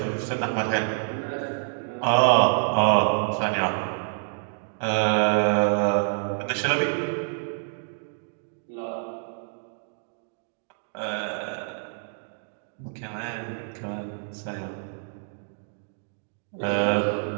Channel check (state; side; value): silent; left; digital silence